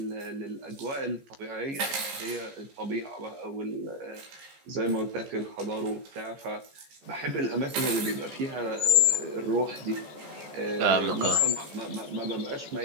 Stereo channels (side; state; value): left; late; 15 ms